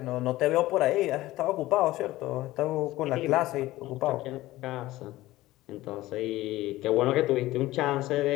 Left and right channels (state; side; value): quieter; right; 17.2 dB